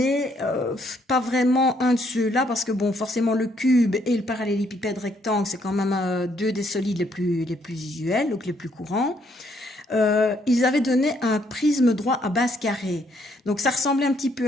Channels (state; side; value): normal; both; correlation 0.70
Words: pas vraiment un de ceux-là parce que bon, forcément le cube et le parallélépipède rectangle, c'est quand même deux des solides les plus usuels, donc les plus courants. Ils avaient donné un prisme droit à base carrée. Donc ça ressemblait un petit